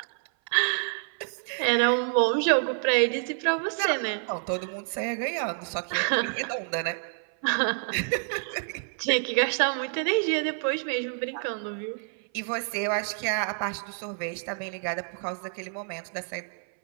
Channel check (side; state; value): left; silent; 57 dB below the other